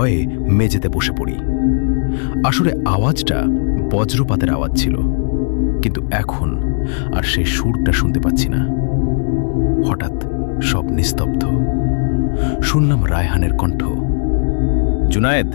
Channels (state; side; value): silent; right; digital silence